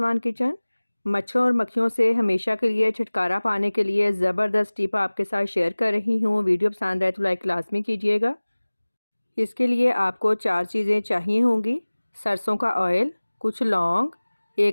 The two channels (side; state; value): both; inverted; correlation -1.00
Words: kitchen. मच्छरों और मक्खियों से हमेशा के लिए छुटकारा पाने के लिए ज़बरदस्त टिप आपके साथ शेयर कर रही हूँ। वीडियो पसंद आए तो लाइक लाज़मी कीजिएगा। इसके लिए आपको 4 चीज़ें चाहिए होंगी। सरसों का ऑयल, कुछ लौंग,